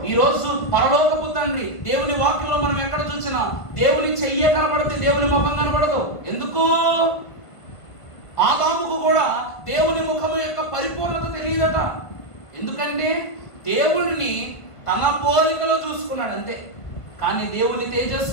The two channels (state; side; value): late; right; 1.6 ms